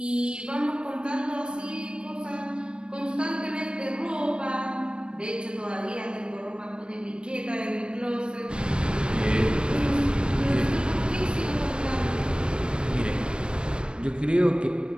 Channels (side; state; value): left; late; 0.054 ms